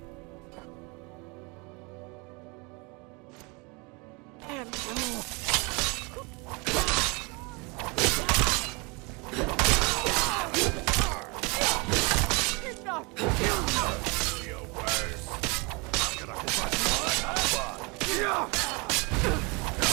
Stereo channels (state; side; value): quieter; left; 28.9 dB